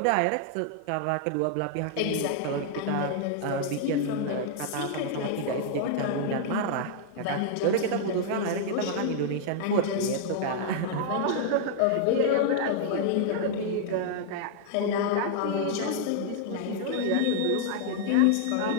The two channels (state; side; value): different; both; correlation -0.01